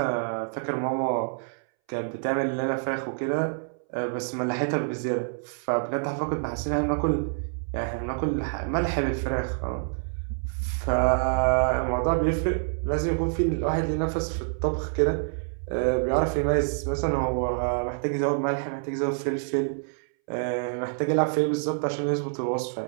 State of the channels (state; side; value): silent; left; 60 dB below the other